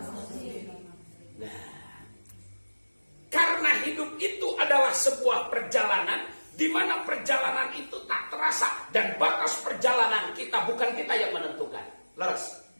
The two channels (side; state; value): both; inverted; correlation -1.00